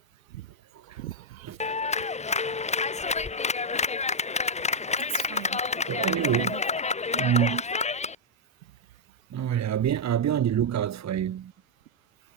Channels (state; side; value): normal; both; correlation -0.03